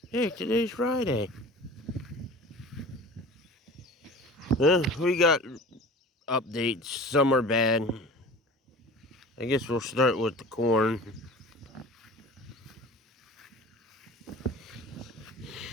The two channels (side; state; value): both; normal; correlation 0.40